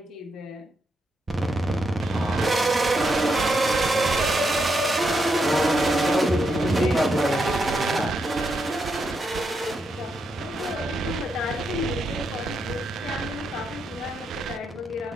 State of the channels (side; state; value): both; normal; correlation 0.81